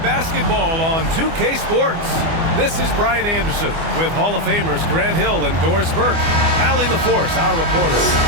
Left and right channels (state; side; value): late; left; 25 ms